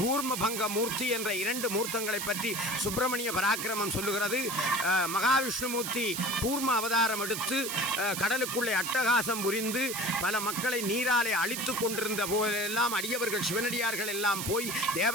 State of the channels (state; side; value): noise; right; hiss, 4 dB below the sound